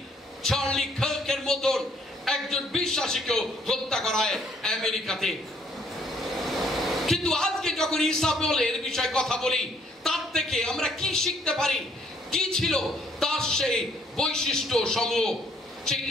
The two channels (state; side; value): normal; both; correlation 0.64